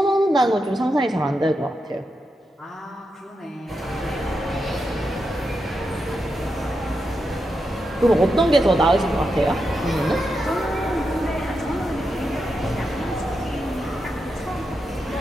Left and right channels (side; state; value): both; normal; correlation 0.86